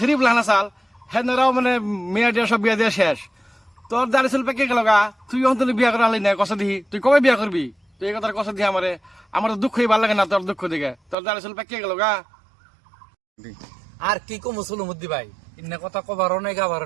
পুলানা চাল সেনারাও মানে মেয়া দিয়া সব বিয়া দিয়া শেষ। তোর দাঁড়ি চুল পেকে গেল গা, তুই অন্তত বিয়া করা হলি না কষা দিহি, তুই কবে বিয়া করবি? তুই এই কথার কষা দিহি আমারে, আমার তো দুঃখই ভালো লাগে না তোর দুঃখ দিকে। তোর দাঁড়ি চুল পেকে গেল গা। আর কি কম সুলমতি ভাই, ইন্না কথা কবারও নাই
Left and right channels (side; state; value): left; drops out; at 11.2 s